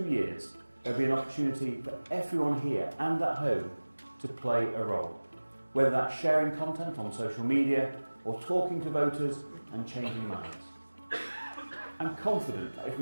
years, there'll be an opportunity for everyone here and at home to play a role, whether that's sharing content on social media or talking to voters and changing minds. I'm confident that if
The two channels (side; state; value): both; inverted; correlation -1.00